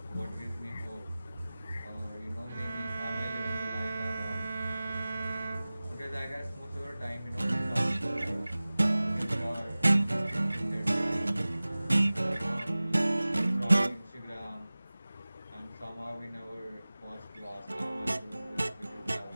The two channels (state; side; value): inverted; both; correlation -0.98